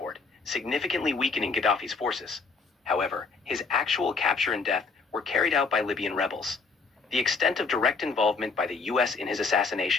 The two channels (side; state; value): right; quieter; 4.4 dB